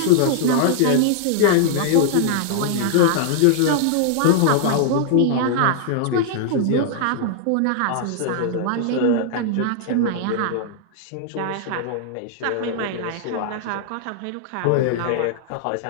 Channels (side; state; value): both; different; correlation -0.01